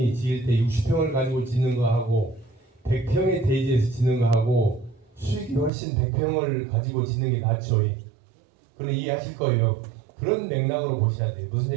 지을 때 60평을 가지고 짓는 거하고 100평의 대지에서 짓는 거하고 수익이 훨씬 100평을 가지고 짓는 게 낫죠. 그건 이해하실 거예요. 그런 맥락으로 보셔야 돼요. 무슨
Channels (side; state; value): left; drops out; at 5.7 s